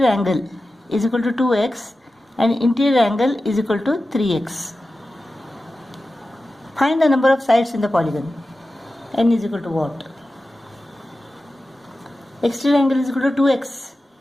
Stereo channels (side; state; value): both; normal; correlation 0.94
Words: angle is equal to 2x and interior angle is equal to 3x. Find the number of sides in the polygon. N is equal to what? Exterior angle is equal to 2x.